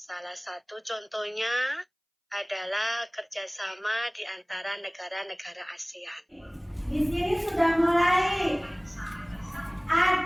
satu contohnya adalah kerjasama di antara negara-negara ASEAN. Di sini sudah mulai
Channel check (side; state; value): both; identical; correlation 1.00